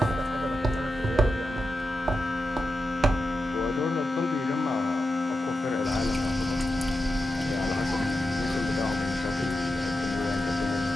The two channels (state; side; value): normal; both; correlation 0.90